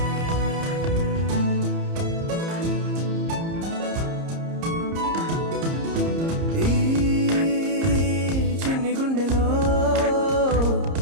ఈ చిన్ని గుండెలో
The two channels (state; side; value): late; left; 30 ms